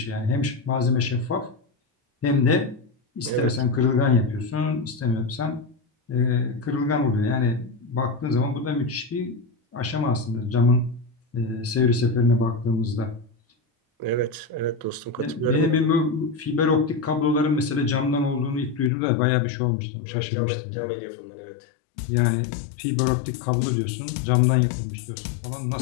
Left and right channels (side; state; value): right; drops out; at 18.9 s